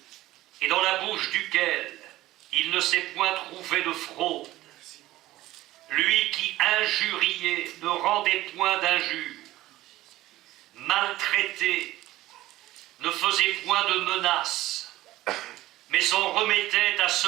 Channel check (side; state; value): left; quieter; 16.3 dB